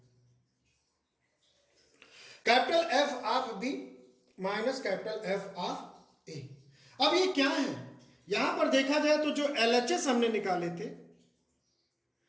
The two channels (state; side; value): identical; both; correlation 1.00